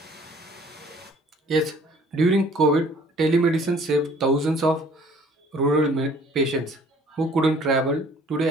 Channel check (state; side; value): normal; both; correlation 0.54